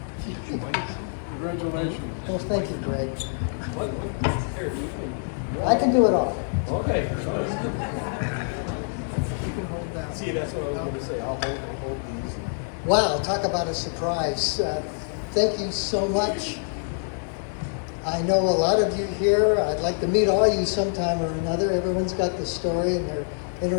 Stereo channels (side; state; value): right; silent; digital silence